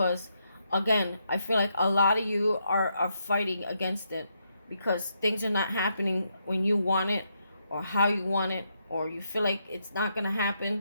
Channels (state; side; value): inverted; both; correlation -0.79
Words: again, I feel like a lot of you are fighting against it because things are not happening when you want it or how you want it, or you feel like it's not going to